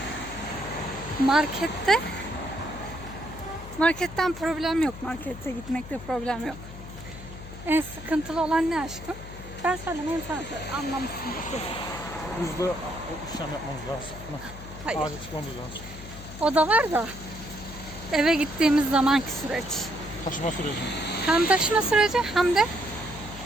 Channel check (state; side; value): noise; left; hum, 13 dB below the sound